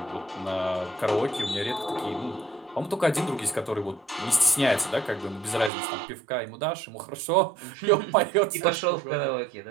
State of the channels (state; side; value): drops out; left; at 5.7 s